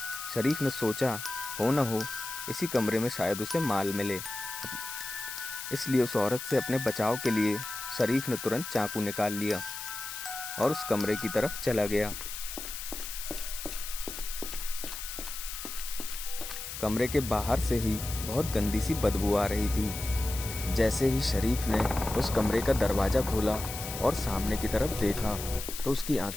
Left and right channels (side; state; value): left; noise; hiss, 8 dB below the sound